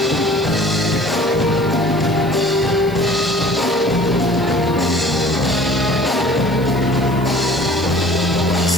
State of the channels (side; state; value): left; noise; hiss, 23 dB below the sound